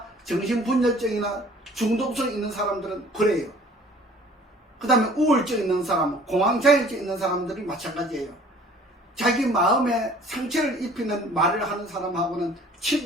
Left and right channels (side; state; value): both; normal; correlation 0.52